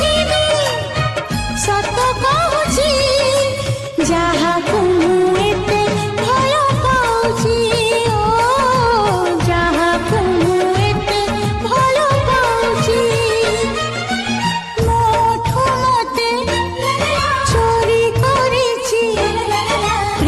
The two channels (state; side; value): identical; both; correlation 1.00